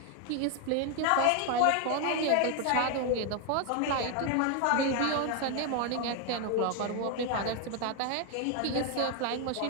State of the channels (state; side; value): different; both; correlation 0.01